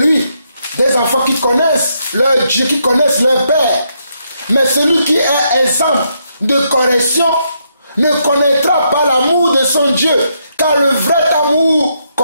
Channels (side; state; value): both; inverted; correlation -0.77